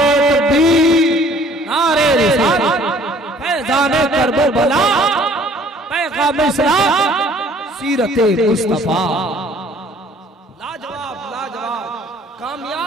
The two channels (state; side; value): normal; both; correlation 0.55